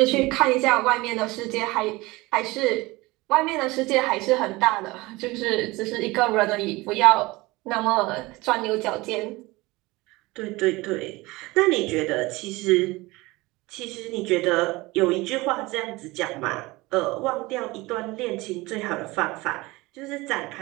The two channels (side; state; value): left; quieter; 21.7 dB